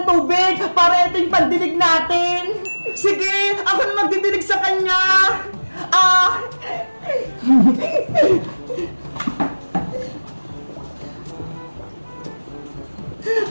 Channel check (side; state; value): both; inverted; correlation -1.00